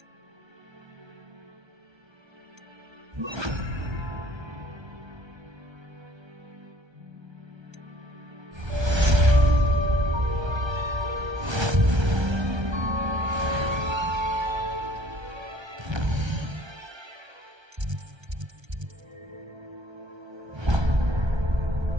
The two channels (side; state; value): left; late; 1.3 ms